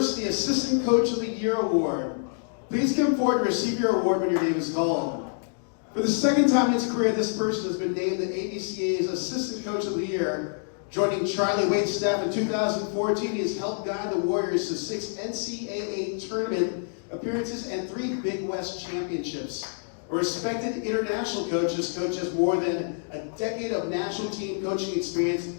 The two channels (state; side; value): silent; right; digital silence